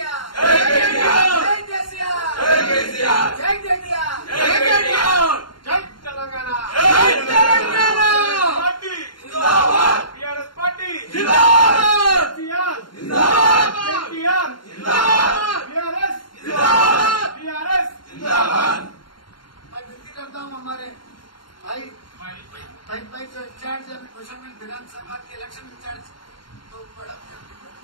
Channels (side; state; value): right; late; 0.72 ms